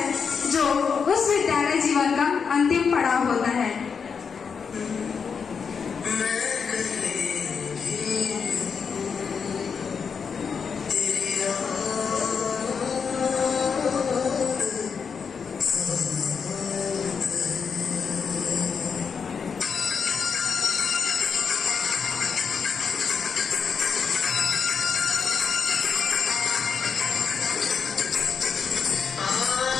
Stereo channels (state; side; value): quieter; right; 6.1 dB